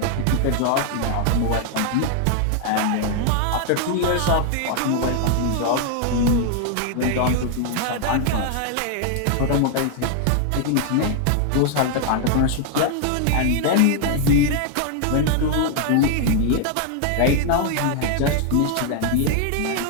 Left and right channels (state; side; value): different; both; correlation 0.00